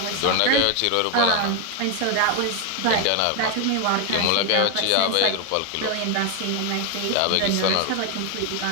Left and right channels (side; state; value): both; different; correlation 0.01